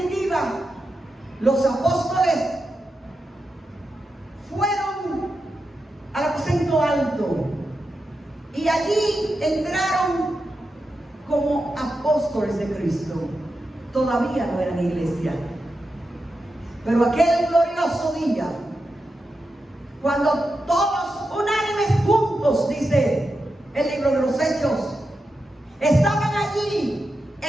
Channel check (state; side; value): normal; both; correlation 0.89